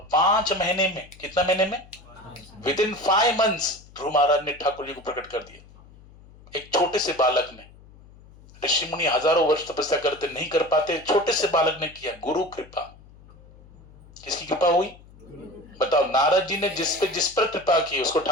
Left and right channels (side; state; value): left; noise; hum, 23 dB below the sound